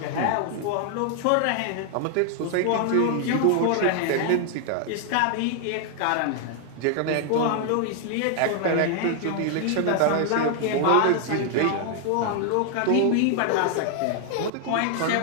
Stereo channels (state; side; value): different; both; correlation 0.00